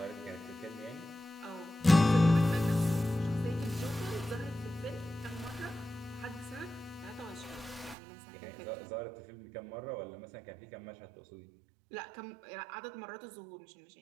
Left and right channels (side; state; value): left; drops out; at 8.0 s